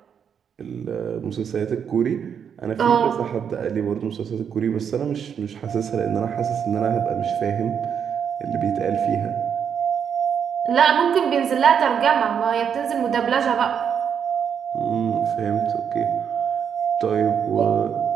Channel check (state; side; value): quieter; left; 7.6 dB